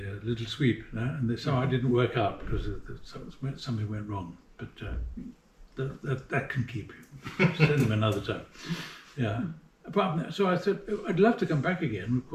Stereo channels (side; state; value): both; identical; correlation 1.00